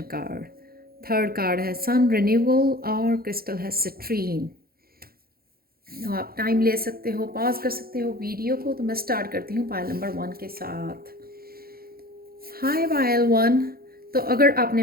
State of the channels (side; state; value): left; late; 0.44 ms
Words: कार्ड। थर्ड कार्ड है सन रिन्यूअल और क्रिस्टल है सिट्रीन। तो आप टाइम ले सकते हो, पॉज कर सकते हो वीडियो को। तो मैं स्टार्ट करती हूँ पायल नंबर 1 के साथ। हाय पायल 1। तो अगर